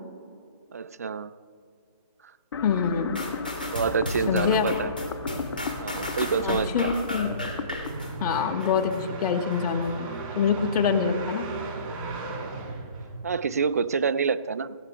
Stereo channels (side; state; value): both; inverted; correlation -0.44